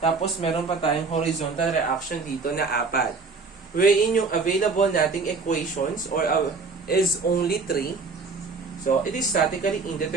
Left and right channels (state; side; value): quieter; left; 4.4 dB